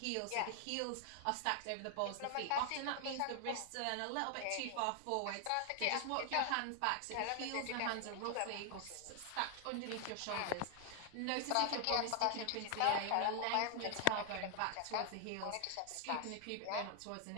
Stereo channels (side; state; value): both; different; correlation 0.00